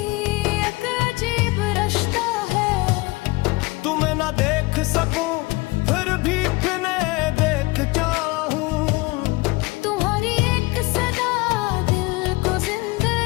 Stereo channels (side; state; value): right; quieter; 23.5 dB